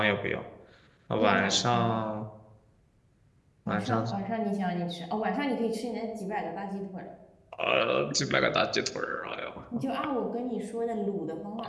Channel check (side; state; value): both; identical; correlation 1.00